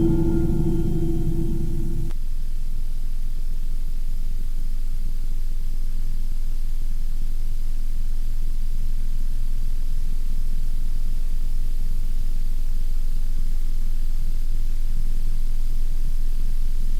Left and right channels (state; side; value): identical; both; correlation 1.00